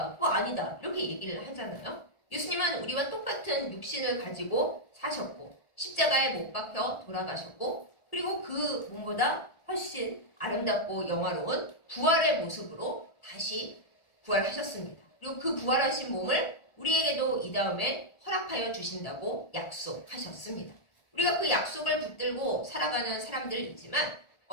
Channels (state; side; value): late; right; 1.4 ms